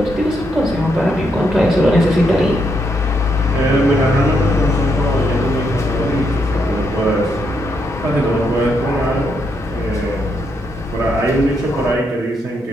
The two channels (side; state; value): both; normal; correlation 0.78